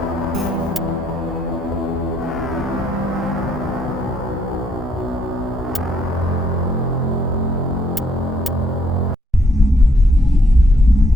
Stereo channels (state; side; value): normal; both; correlation 0.71